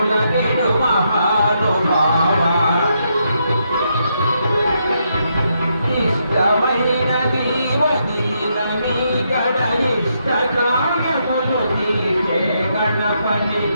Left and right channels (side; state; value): both; inverted; correlation -0.79